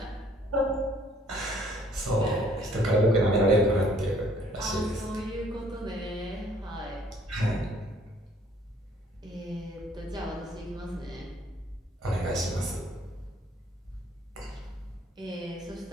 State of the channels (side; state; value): both; normal; correlation 0.60